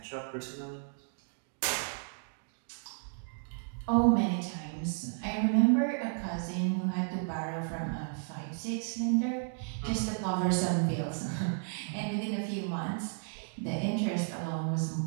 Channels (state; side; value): silent; left; 56 dB below the other